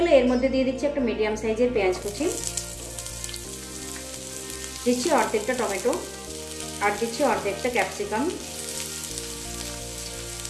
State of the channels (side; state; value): both; identical; correlation 1.00